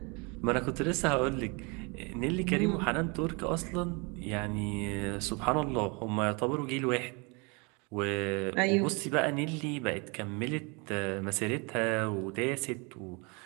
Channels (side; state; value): left; quieter; 30.4 dB